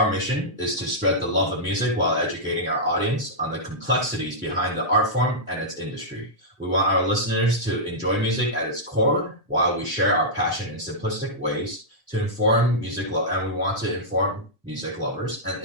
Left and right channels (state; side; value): normal; both; correlation -0.11